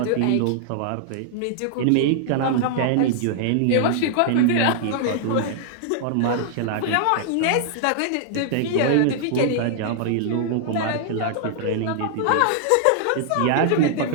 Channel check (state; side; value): different; both; correlation -0.01